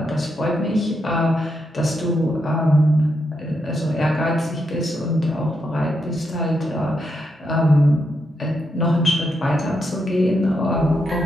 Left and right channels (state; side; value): normal; both; correlation 0.82